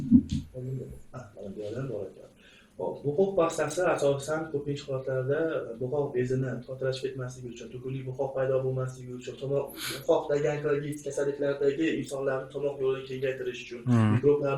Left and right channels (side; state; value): both; identical; correlation 1.00